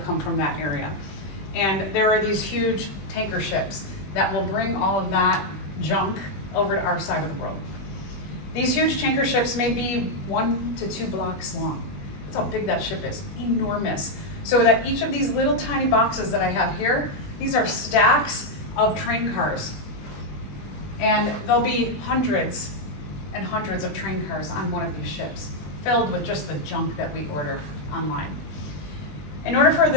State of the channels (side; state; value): right; late; 20 ms